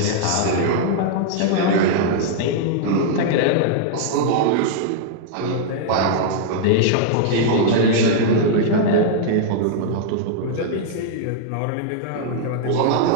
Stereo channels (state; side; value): different; both; correlation -0.01